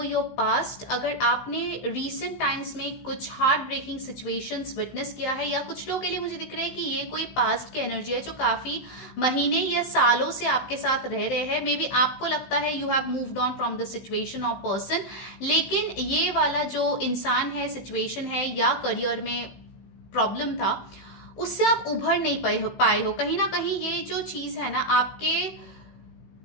your past। अगर आपने recent times में कुछ हार्ट ब्रेकिंग सिचुएशंस विटनेस किया है, या कुछ लोगों के लिए मुझे दिख रहा है कि ये कोई पास्ट की एनर्जी है जो काफी महीने या सालों से आपके साथ रह रहे हैं। मे बी आपको लगता है you have moved on from the situation और पर्सन, लेकिन ये वाला जो इंसान है, सिचुएशन है या करियर में प्रॉब्लम था, उससे आप उभर नहीं पाए हो। कहीं ना कहीं ये जो चीज है ना आपके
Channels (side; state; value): right; late; 15 ms